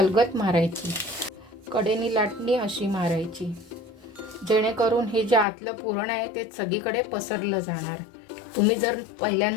मारायची. कडेने लाटणी अशी मारायची, जेणेकरून हे जे आतलं पुरण आहे ते सगळीकडे पसरलं जाणार. तुम्ही जर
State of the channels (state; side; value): drops out; right; at 5.5 s